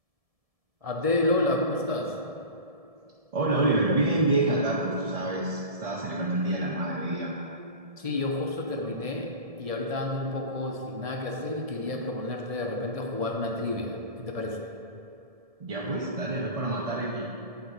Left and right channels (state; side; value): late; left; 1.7 ms